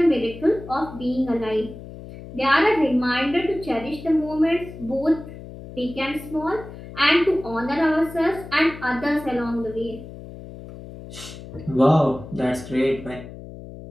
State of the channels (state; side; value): noise; left; hum, 14 dB below the sound